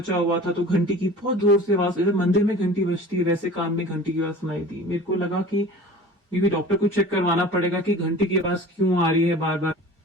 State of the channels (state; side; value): normal; both; correlation 0.40